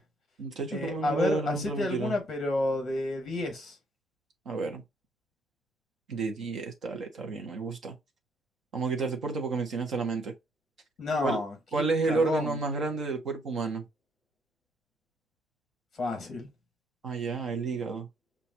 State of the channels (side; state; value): both; normal; correlation 0.68